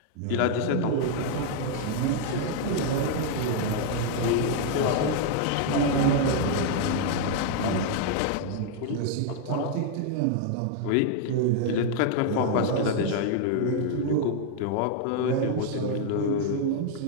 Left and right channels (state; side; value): different; both; correlation 0.00